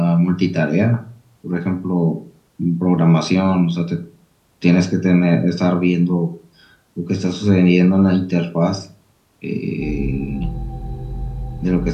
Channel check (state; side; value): identical; both; correlation 1.00